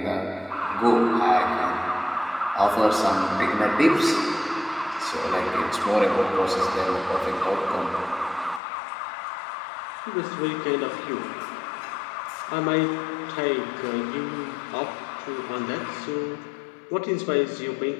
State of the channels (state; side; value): drops out; right; at 8.6 s